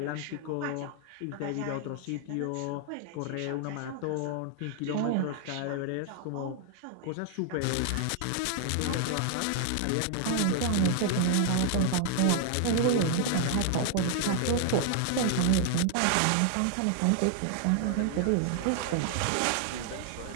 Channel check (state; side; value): different; both; correlation 0.00